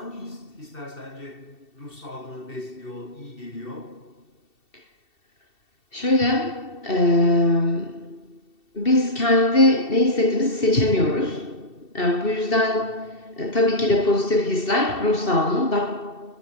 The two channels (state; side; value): late; right; 2.7 ms